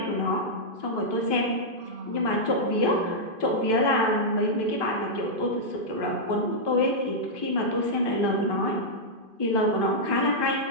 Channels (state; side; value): late; left; 2.5 ms